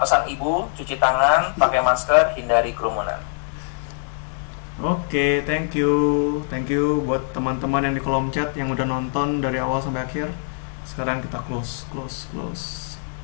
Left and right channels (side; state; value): right; silent; digital silence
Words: pesan ibu, cuci tangan, pakai masker, hindari kerumunan. Oke, thank you buat teman-teman yang di kolom chat yang udah nonton dari awal sampai akhir. Sekarang kita close.